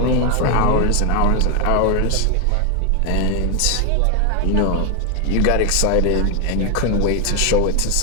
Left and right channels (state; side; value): different; both; correlation 0.01